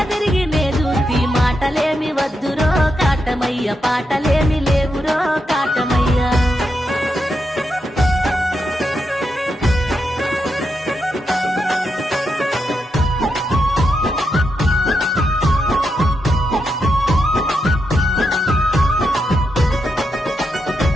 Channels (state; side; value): normal; both; correlation 0.84